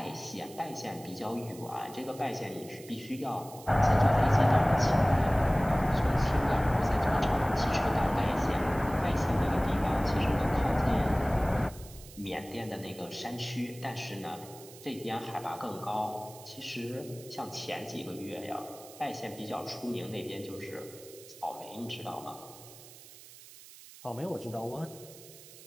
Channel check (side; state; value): right; noise; hiss, 19 dB below the sound